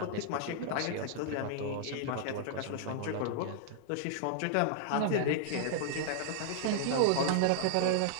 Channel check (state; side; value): different; both; correlation -0.01